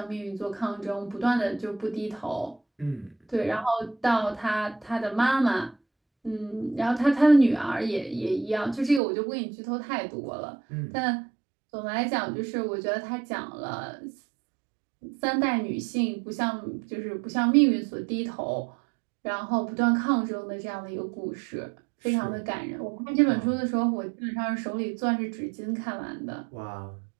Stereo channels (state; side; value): drops out; left; at 9.0 s